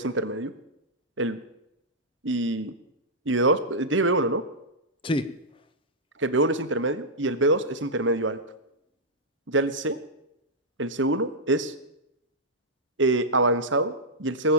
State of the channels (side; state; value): both; normal; correlation -0.09